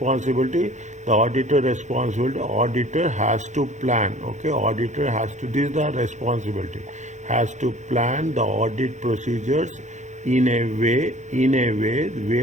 The auditor has to plan, okay? This is the responsibility, has to plan the audit procedures in a way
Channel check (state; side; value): late; left; 0.35 ms